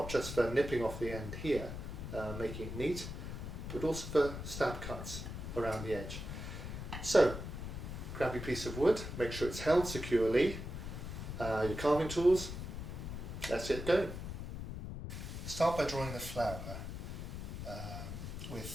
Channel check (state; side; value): noise; left; rumble, 7 dB below the sound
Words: just for nipping off the end here, making it neat, but also for stab cuts around the edge. So, grab your piece of wood, make sure it's held securely, your carving tools, let's get going. Start by drawing the flower